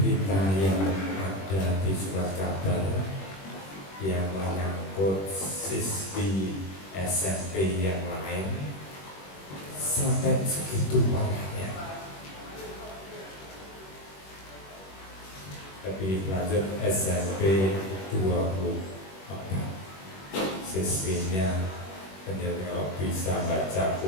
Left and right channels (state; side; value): late; right; 21 ms